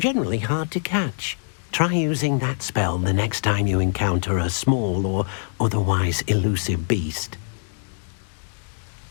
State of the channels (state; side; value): silent; right; digital silence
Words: hard to catch. Try using that spell the next time you encounter a small or otherwise elusive beast.